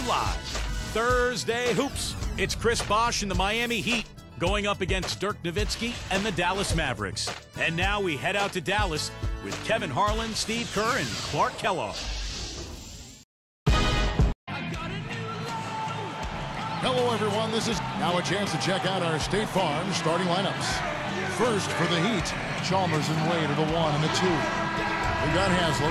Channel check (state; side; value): identical; both; correlation 1.00